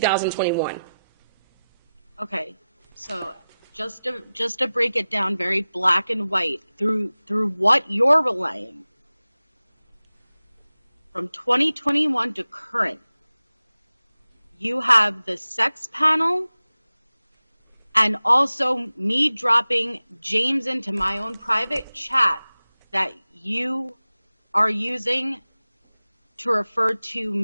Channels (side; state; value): both; inverted; correlation -0.96